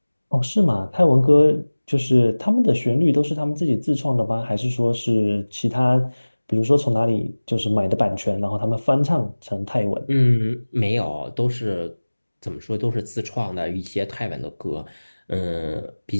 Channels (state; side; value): inverted; both; correlation -1.00